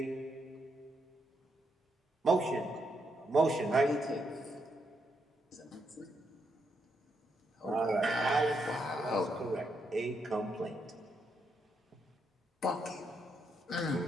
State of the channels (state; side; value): normal; both; correlation 0.79